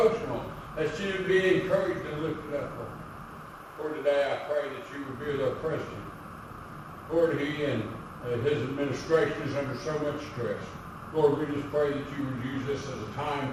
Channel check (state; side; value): identical; both; correlation 1.00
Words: that she would be encouraged and lifted up, Lord. Lord, today I pray that you would be with our president. Lord, he and his administration is under so much stress. Lord, we just pray that you would use this as a time